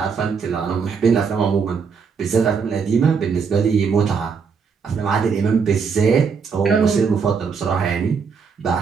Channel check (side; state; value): left; quieter; 5.8 dB